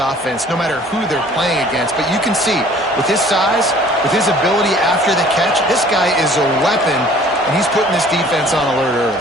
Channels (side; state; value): both; normal; correlation 0.52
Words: no matter who they're playing against. But you can see, with his size, with his ability after the catch, this guy is a weapon, and he's putting this defense on alert